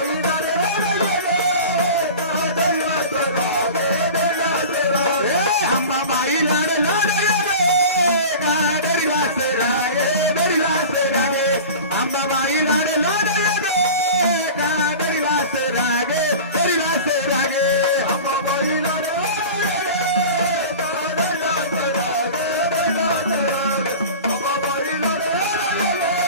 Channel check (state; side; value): inverted; both; correlation -0.35